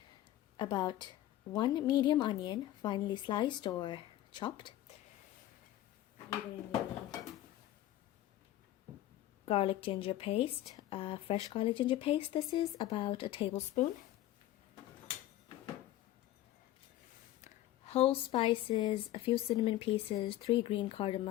about 1 medium onion, finely sliced or chopped. You're going to need garlic ginger paste, fresh garlic ginger paste. This is about a tablespoon. Whole spices, a few cinnamon pieces, 3 green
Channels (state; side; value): quieter; right; 14.1 dB